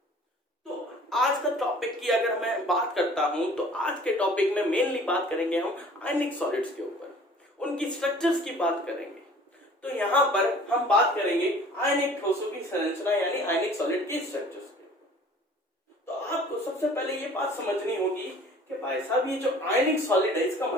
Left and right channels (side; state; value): both; normal; correlation 0.49